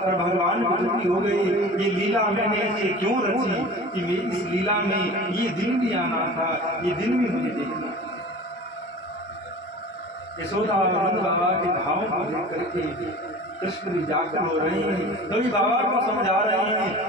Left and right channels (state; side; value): normal; both; correlation 0.39